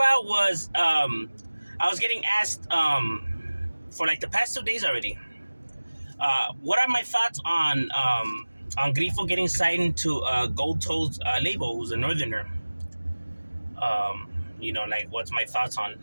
was, I was getting asked for like the past 2 days already. What are my thoughts on Grifo getting signed to Goldtoes Lable, who's a northerner? Like what's my thoughts on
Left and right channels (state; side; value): inverted; both; correlation -1.00